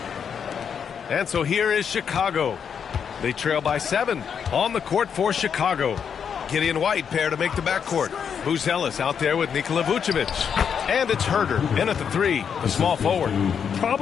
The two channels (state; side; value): quieter; right; 7.3 dB